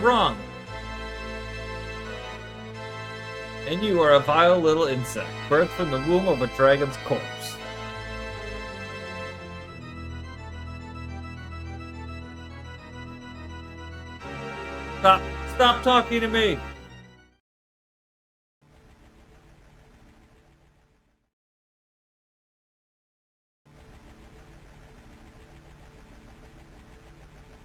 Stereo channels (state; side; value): identical; both; correlation 1.00